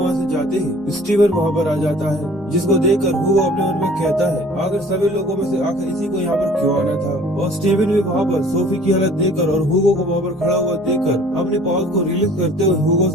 से जाते ही स्टीवन वहाँ पर आ जाता है जिसको देखकर हुगो अपने मन में कहता है आखिर सभी लोगों में से आखिर इसी को यहाँ पर क्यों आना था। और स्टीवन भी वहाँ पर सोफी की हालत देखकर और हुगो को वहाँ पर खड़ा हुआ देखकर अपने पावर्स को रिलीज करते हुए हुगो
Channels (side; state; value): both; normal; correlation 0.51